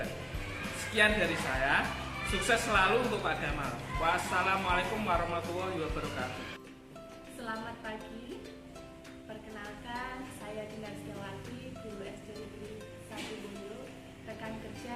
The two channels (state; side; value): identical; both; correlation 1.00